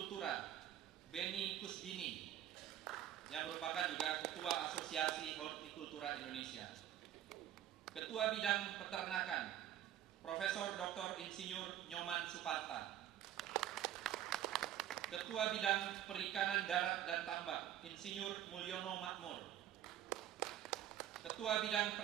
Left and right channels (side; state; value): left; quieter; 11.4 dB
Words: Beni Kusbini, yang merupakan juga Ketua Asosiasi Hortikultura Indonesia. Ketua Bidang Peternakan Profesor Dr. Insinyur Nyoman Suparta. Ketua Bidang Perikanan Darat dan Tambak Insinyur Mulyono Makmur. Ketua Bidang